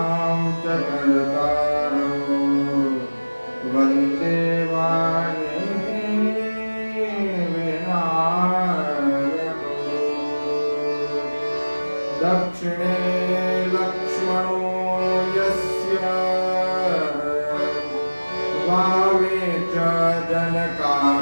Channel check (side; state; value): both; inverted; correlation -1.00